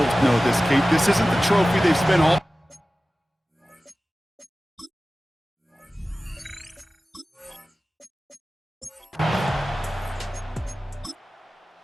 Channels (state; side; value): normal; both; correlation 0.96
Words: know this, Kate. This isn't the trophy they've spent all...